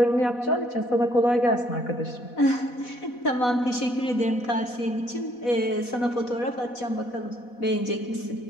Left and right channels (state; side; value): late; right; 4.1 ms